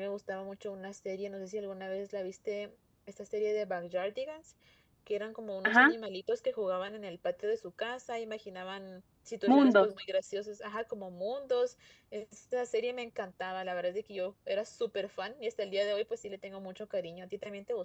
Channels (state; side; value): identical; both; correlation 1.00